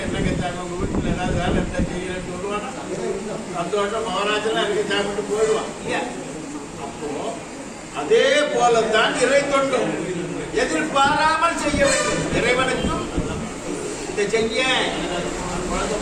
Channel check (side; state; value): both; identical; correlation 1.00